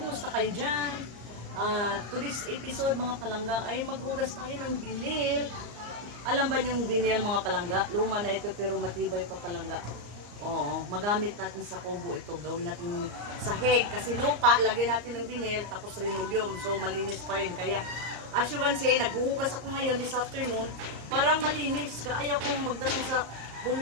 kayo dyan? To this episode mga palangga ay maghugas tayo ng vinil. Alam ba yung vinil mga palangga? Luma na ito pero matibay pa palangga. Oo, magamit natin sa kubo ito. Gawin natin sahig kasi lupa, lagyan natin ng vinil tapos linoleum. So malinis pa rin. Kaya as you can see, naghuhugas ako ngayon this afternoon. Parang malinis. Kaya kong magdating sa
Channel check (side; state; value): left; late; 34 ms